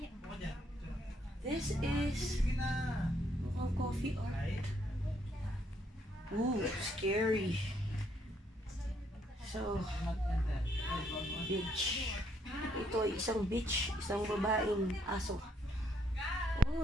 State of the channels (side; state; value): both; normal; correlation 0.71